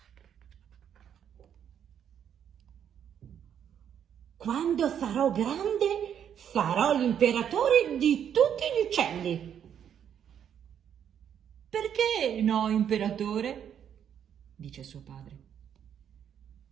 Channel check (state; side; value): quieter; left; 8.9 dB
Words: Quando sarò grande, sarò l'imperatore di tutti gli uccelli. Perché no, imperatore? Dice suo padre.